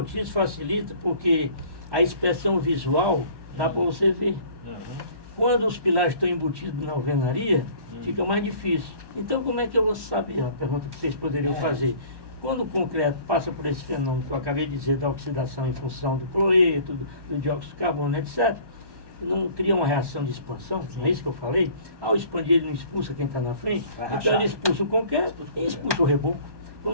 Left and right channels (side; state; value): left; late; 1.1 ms